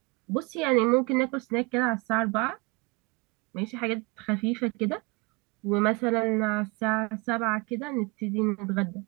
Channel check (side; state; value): left; quieter; 28.1 dB